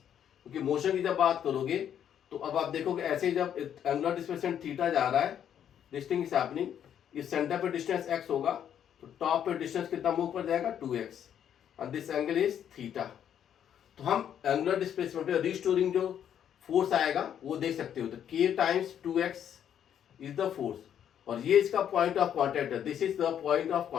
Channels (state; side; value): quieter; right; 9.4 dB